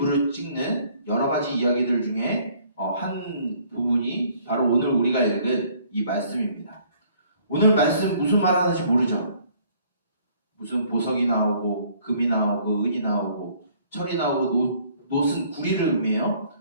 찍는 여러 가지 이야기들 중에 한 부분이 바로 오늘 우리가 읽은 이 말씀입니다. 오늘 말씀 무슨 말 하는지 모르죠? 무슨 보석이 나오고 금이 나오고 은이 나오고 철이 나오고 노슨 구리를 의미해요.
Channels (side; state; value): both; inverted; correlation -0.60